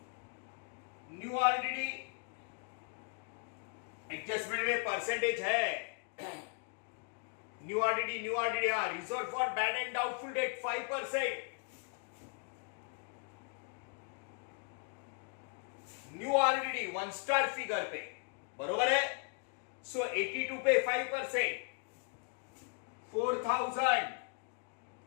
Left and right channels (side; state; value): right; quieter; 39.6 dB